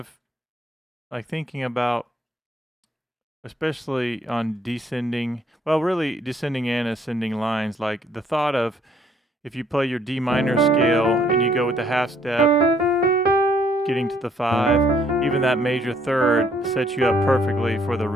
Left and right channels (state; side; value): normal; both; correlation 0.65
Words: like thinking about, especially on descending, well, really descending and ascending lines, like the thought of if you play your D minor scale and you go with the half step, getting to the 5, even that major third sets you up perfectly for the